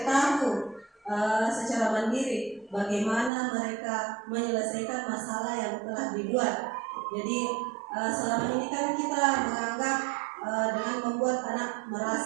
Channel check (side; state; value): left; drops out; at 3.3 s